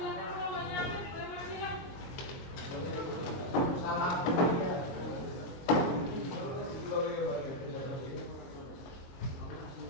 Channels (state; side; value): late; right; 22 ms